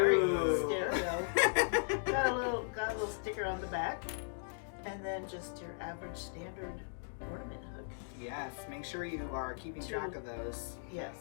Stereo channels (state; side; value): silent; right; digital silence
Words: Got a little sticker on the back, and then just your average standard ornament hook. Yes, make sure you are keeping track of those. Yes,